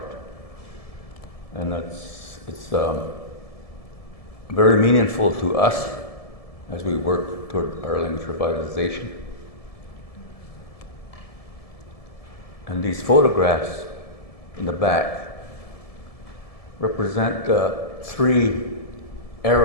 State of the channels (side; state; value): right; late; 1.7 ms